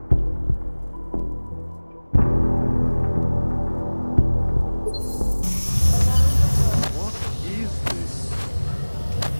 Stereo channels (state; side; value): inverted; both; correlation -1.00